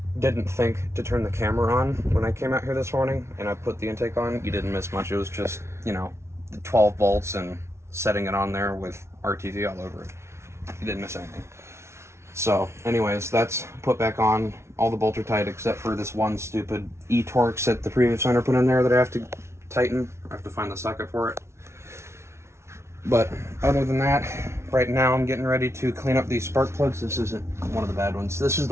didn't think to turn the camera on when I came out here this morning, and I put the intake on. You didn't miss much. It was just, the 12 volts and setting it on there with RTV all over it. You didn't miss anything. So anyways, that's put back on. All the bolts are tight except for this one stupid E-Torx that the previous owner put in there that I have to tighten. I have to find the socket for it. But other than that, right now I'm getting ready to clean up these spark plugs. This isn't one of the bad ones. This is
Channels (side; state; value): left; late; 0.13 ms